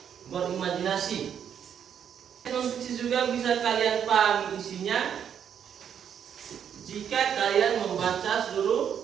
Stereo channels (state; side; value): quieter; left; 8.5 dB